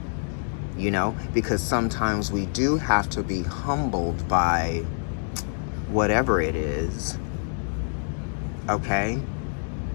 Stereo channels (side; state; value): right; silent; digital silence